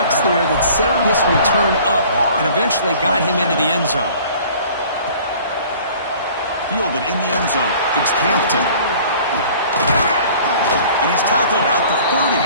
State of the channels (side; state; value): both; inverted; correlation -0.49